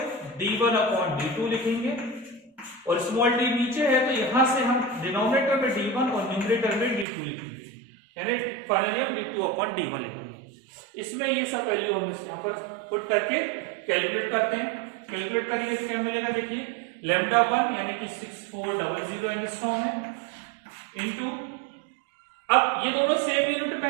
d1 अपॉन d2 लिखेंगे, और स्मॉल d नीचे है तो यहां से हम डिनोमिनेटर में d1 और न्यूमरेटर में d2 लिखेंगे, यानी फाइनली हम d2 अपॉन d1 लिखेंगे। इसमें ये सब वैल्यू हम यहाँ पर पुट करके कैलकुलेट करते हैं। कैलकुलेट करेंगे तो क्या मिलेगा, देखिए λ1 यानी कि 6400 एंगस्ट्रॉम है, इनटू, अब ये दोनों सेम यूनिट में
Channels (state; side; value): drops out; left; at 7.1 s